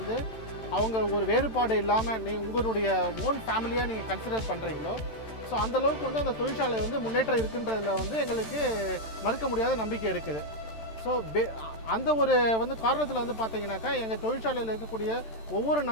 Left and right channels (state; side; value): late; right; 13 ms